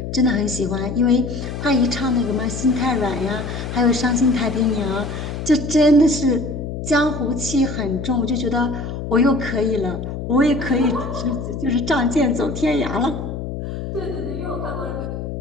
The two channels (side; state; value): left; noise; hum, 6 dB below the sound